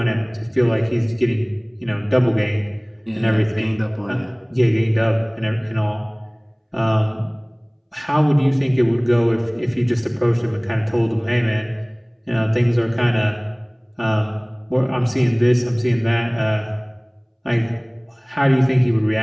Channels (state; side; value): identical; both; correlation 1.00